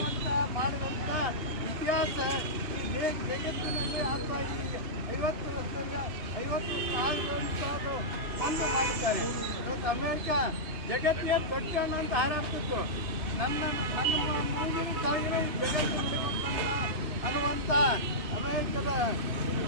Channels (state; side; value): late; left; 2.9 ms